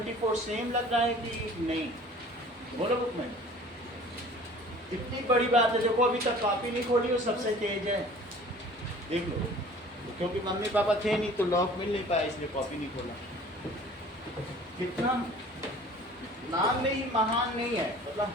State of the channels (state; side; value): normal; both; correlation 0.47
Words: सेम लग रहा है कि नहीं? बोलो बुक में। इतनी बड़ी बात है, देखो अभी तक कॉपी नहीं खोली हो, सबसे तेज है, देख लो। क्योंकि मम्मी पापा थे नहीं तो लॉक मिल नहीं पाया, इसलिए कॉपी नहीं खोला। कितना नाम में ही महान नहीं है, मतलब